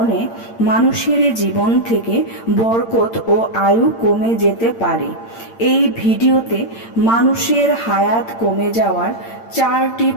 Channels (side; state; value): right; late; 8.8 ms